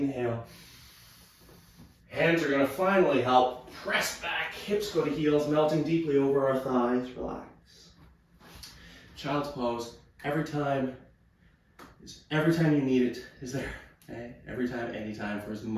Hands are going to finally help. Press back, hips go to heels, melting deeply over our thighs. Relax. Child's pose, every time you need it is there. Okay? Every time, anytime, for as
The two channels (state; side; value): identical; both; correlation 1.00